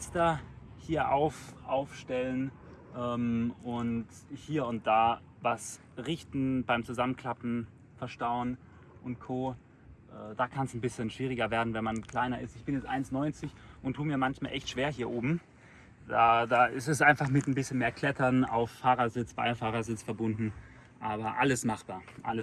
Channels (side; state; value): both; identical; correlation 1.00